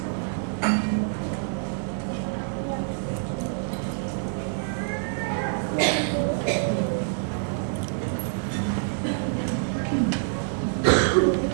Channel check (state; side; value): silent; left; digital silence